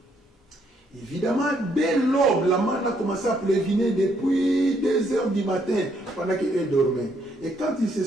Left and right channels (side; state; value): both; normal; correlation 0.71